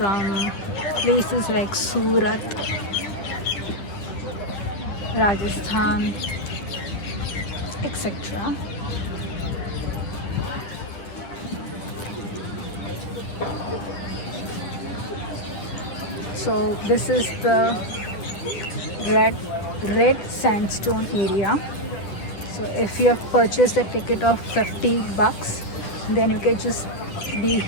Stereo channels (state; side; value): late; right; 10 ms